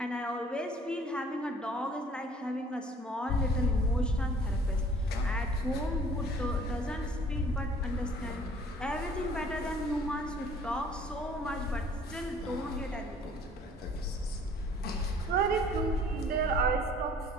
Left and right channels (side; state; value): both; normal; correlation 0.53